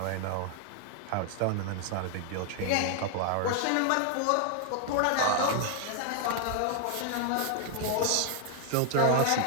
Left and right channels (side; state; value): both; different; correlation 0.00